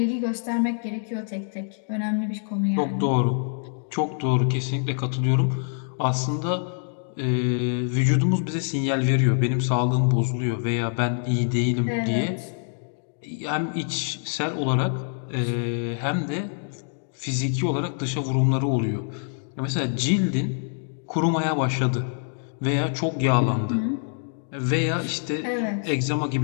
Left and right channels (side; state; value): right; silent; digital silence